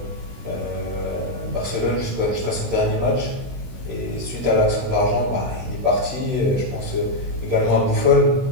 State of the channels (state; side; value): late; left; 16 ms